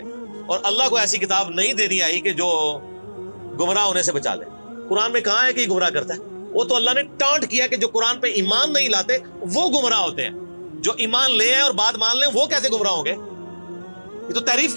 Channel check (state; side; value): inverted; both; correlation -1.00